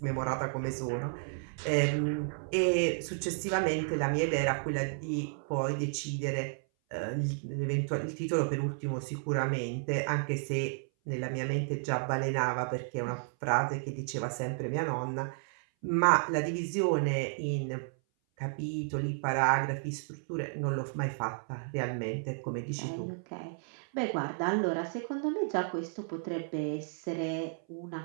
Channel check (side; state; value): left; silent; 56 dB below the other